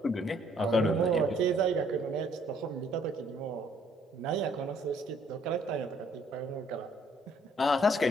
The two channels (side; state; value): both; normal; correlation 0.64